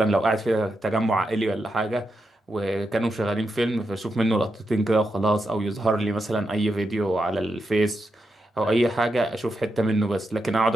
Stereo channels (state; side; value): normal; both; correlation 0.86